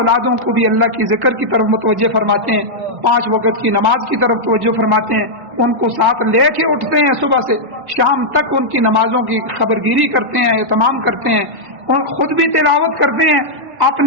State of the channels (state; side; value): late; left; 1.7 ms